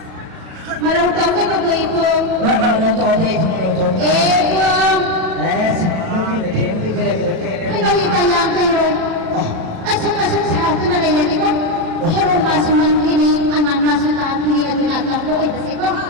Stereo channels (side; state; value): left; late; 37 ms